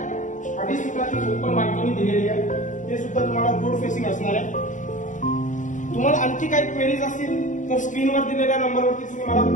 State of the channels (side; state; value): right; late; 0.36 ms